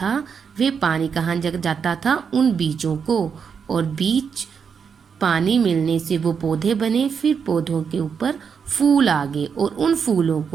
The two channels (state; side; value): quieter; left; 6.5 dB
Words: वे पानी कहाँ जाता था? उन बीजों को। और बीज पानी मिलने से वो पौधे बने। फिर पौधों के ऊपर फूल आ गए और उन फूलों